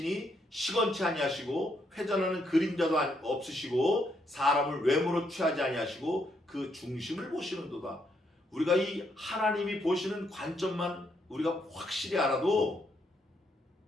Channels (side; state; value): both; normal; correlation 0.75